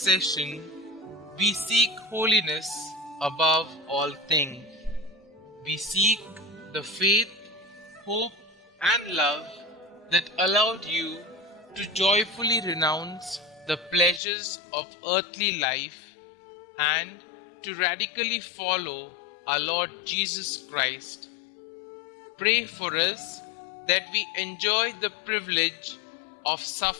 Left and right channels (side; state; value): right; drops out; at 14.2 s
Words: we seek holiness above all things. We seek the faith, hope, and love that allowed you to joyfully renounce the pleasures of earthly life and to radically follow our Lord Jesus Christ. Pray for us that we enjoy the privilege of